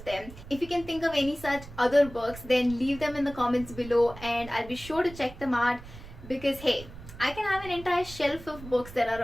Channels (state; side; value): noise; right; rumble, 15 dB below the sound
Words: them. If you can think of any such other books, then leave them in the comments below and I'll be sure to check them out, because hey, I can have an entire shelf of books that